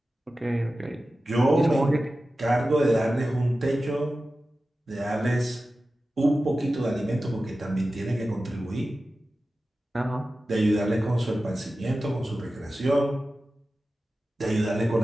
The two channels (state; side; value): normal; both; correlation 0.94